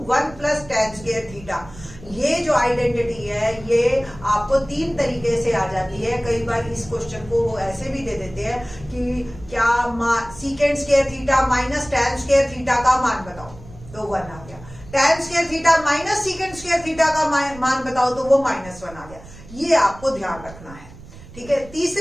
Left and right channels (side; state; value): right; noise; rumble, 18 dB below the sound